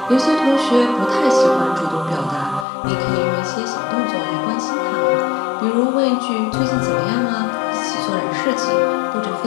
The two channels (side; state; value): right; drops out; at 2.7 s